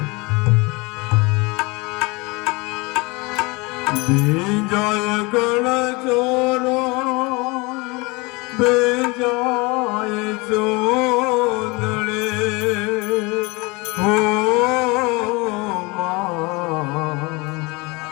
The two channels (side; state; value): right; quieter; 25.9 dB